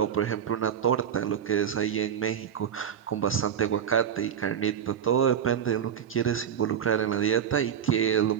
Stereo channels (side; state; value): left; quieter; 8.6 dB